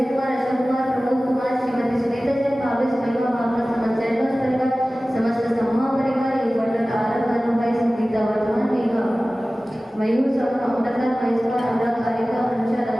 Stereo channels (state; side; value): normal; both; correlation 0.97